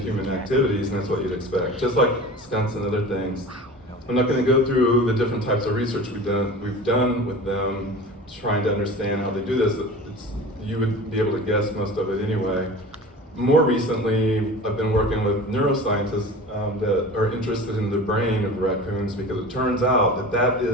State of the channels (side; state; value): both; normal; correlation 0.36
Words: activities, and that's what you'd expect. Just like skunks and other things. I'm not going to go through the different types of research we've done with them, trying to understand how they do this. You would be able to guess most of it anyway. More recently, I've been working with neuroscientists that are interested in the brain of raccoons because it turns out that